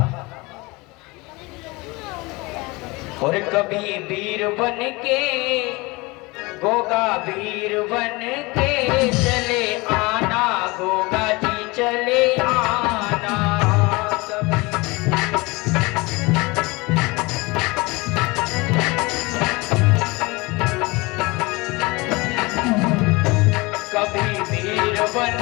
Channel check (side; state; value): right; quieter; 24.4 dB